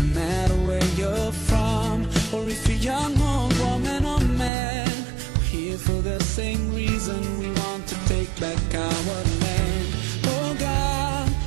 matter where you're from, or if you're young or woman or man, we're here for the same reason. We want to take back our land. Oh God,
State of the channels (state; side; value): drops out; left; at 4.5 s